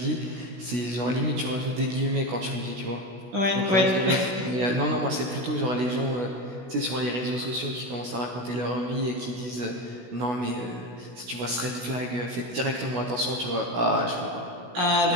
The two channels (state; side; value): late; left; 16 ms